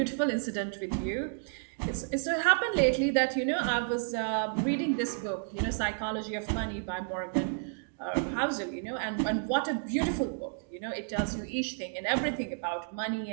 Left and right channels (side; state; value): left; silent; digital silence